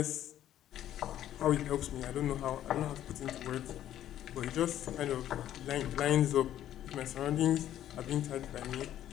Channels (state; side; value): quieter; right; 11.8 dB